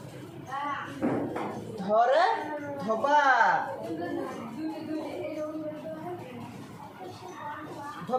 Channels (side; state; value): both; identical; correlation 1.00